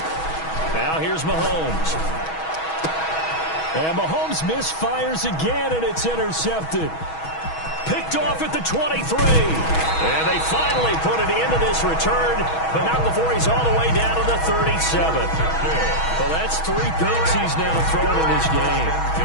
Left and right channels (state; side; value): late; right; 6.2 ms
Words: Now here's Mahomes. And Mahomes misfires again, and it's intercepted. Picked off at the 23. And they finally put an end to this return, but not before he's all the way down to the 37th. Well, that's 3 picks he's now thrown in this game.